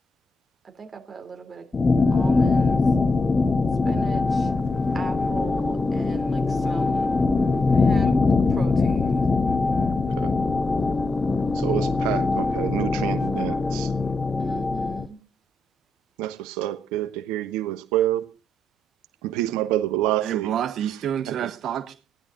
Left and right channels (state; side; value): normal; both; correlation 0.81